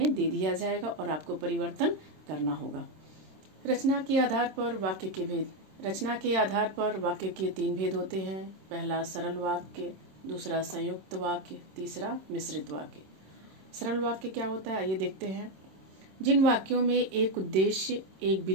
दे दिया जाएगा और आपको परिवर्तन करना होगा। रचना के आधार पर वाक्य के भेद। रचना के आधार पर वाक्य के 3 भेद होते हैं। पहला सरल वाक्य, दूसरा संयुक्त वाक्य, तीसरा मिश्रित वाक्य। सरल वाक्य क्या होता है, आइए देखते हैं। जिन वाक्यों में एक उद्देश्य, एक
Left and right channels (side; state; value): left; late; 26 ms